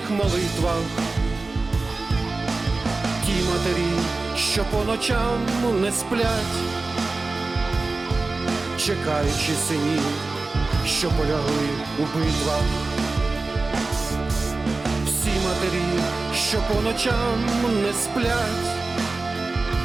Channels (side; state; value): left; quieter; 3.5 dB